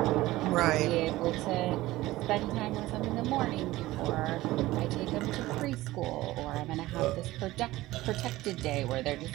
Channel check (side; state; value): left; quieter; 17.5 dB